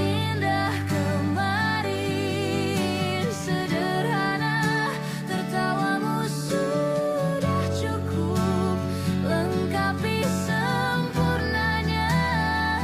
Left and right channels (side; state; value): both; identical; correlation 1.00